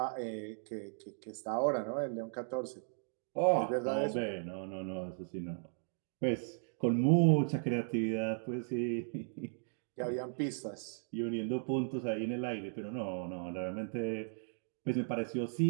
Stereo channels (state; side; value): silent; left; digital silence